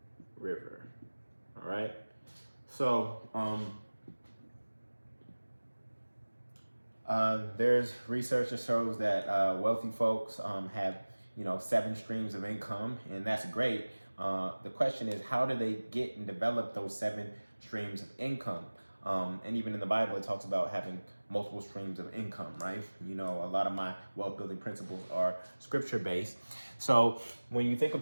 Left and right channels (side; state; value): both; inverted; correlation -1.00